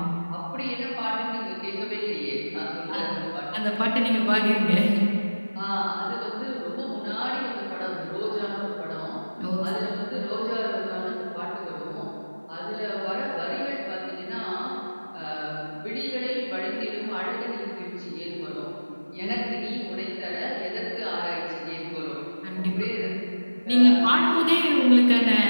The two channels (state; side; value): inverted; both; correlation -1.00